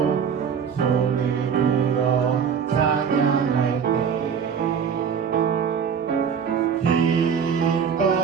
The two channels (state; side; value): quieter; left; 7.1 dB